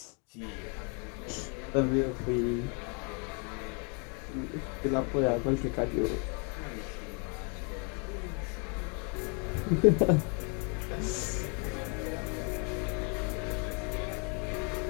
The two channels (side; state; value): right; quieter; 36.8 dB